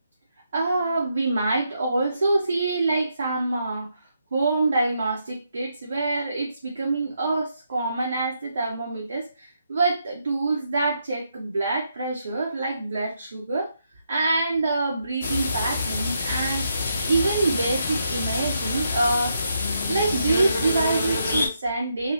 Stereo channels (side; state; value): both; inverted; correlation -0.79